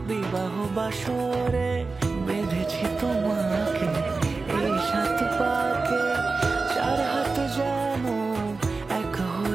বিবাহ বাসরে বেঁধেছি তোমাকে এই সাত পাকে চার হাত যেন এক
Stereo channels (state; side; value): quieter; left; 4.0 dB